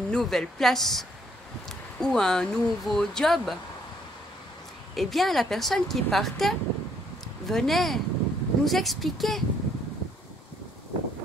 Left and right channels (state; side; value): normal; both; correlation 0.67